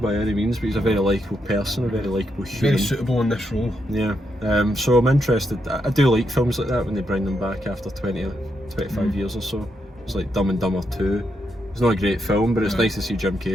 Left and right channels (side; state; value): both; normal; correlation 0.81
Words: any means, but he's a very likeable person, a very likeable human. Very suitable in this role. Yeah, so I'm interested. I do like films like that when they bring them back after 20 or 25 years or so. It's like Dumb and Dumber 2. It's not a great film, but it's nice to see Jim